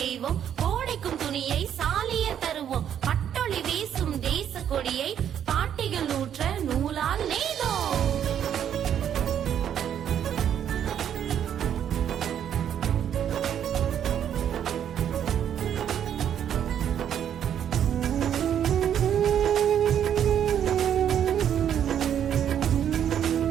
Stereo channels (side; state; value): left; quieter; 9.4 dB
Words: நெய்வோம். கோடைக்கும் துணியை சாலிய தருவோம். பட்டொளி வீசும் தேச கொடியை பாட்டிகள் நூற்ற நூலால் நெய்தோம்.